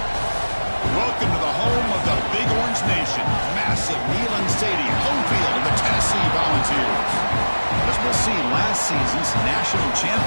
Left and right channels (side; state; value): both; inverted; correlation -1.00